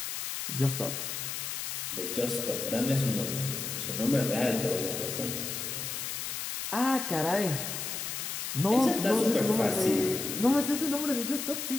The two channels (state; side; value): noise; left; hiss, 4 dB below the sound